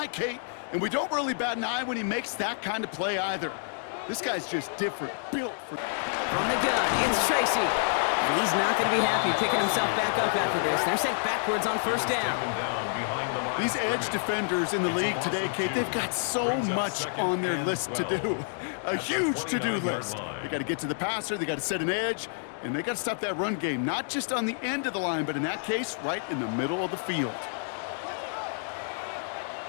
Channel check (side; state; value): right; silent; digital silence